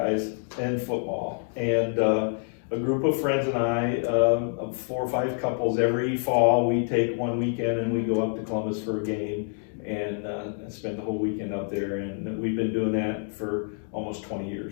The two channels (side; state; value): right; silent; 58 dB below the other